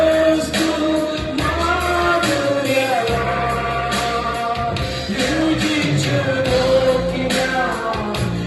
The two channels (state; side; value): identical; both; correlation 1.00